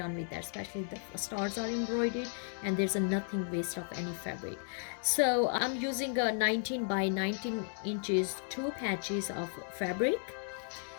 with that, especially the stars are embroidered and there's a nothing waste of any fabric. So I'm using a 19 by 19 inches two patches of fabric,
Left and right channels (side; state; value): right; silent; 55 dB below the other